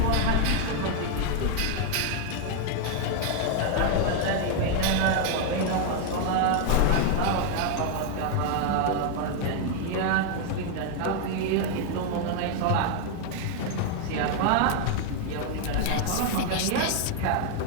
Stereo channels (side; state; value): both; different; correlation 0.00